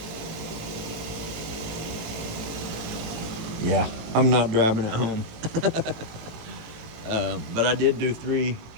Yeah, I'm not driving it home. But I did do 3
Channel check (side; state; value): left; late; 18 ms